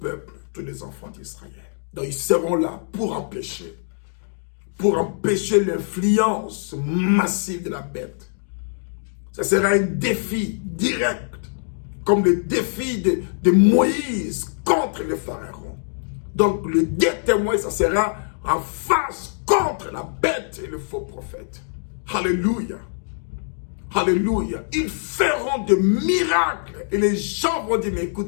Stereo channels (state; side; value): silent; right; digital silence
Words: tous les enfants d'Israël. Donc ils seront là pour empêcher l'influence massive de la bête. Ça sera un défi direct, comme le défi de Moïse contre le pharaon. Donc le deux témoins, ça sera en face contre la bête et le faux prophète. Alléluia. Alléluia. Ils feront des miracles et les gens vont dire, mais